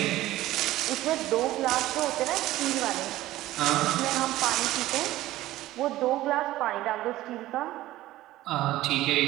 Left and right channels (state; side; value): quieter; left; 15.8 dB